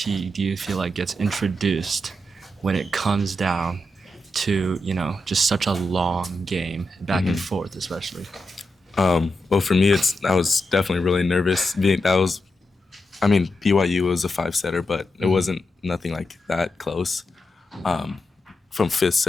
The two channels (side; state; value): both; normal; correlation 0.86